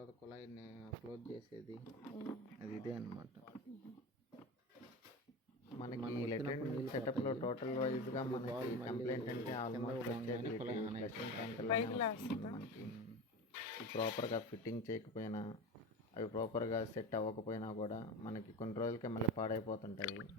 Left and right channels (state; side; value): normal; both; correlation 0.27